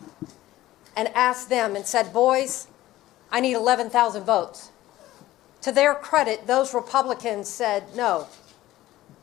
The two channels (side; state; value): right; quieter; 15.7 dB